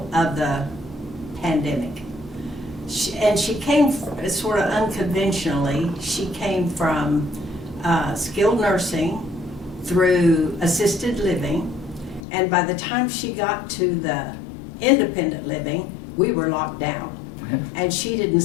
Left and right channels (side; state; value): right; drops out; at 12.2 s